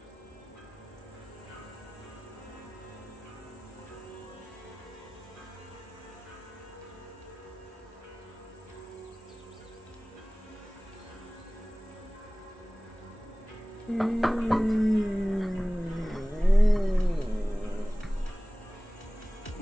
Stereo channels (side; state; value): both; normal; correlation 0.98